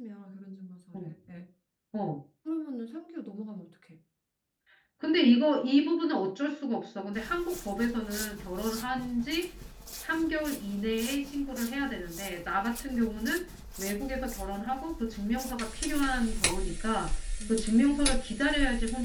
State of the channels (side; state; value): both; identical; correlation 1.00